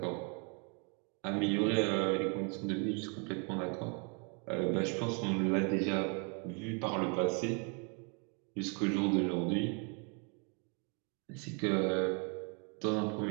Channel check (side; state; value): left; quieter; 36.6 dB